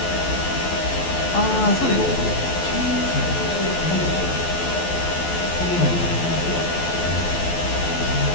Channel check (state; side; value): late; right; 12 ms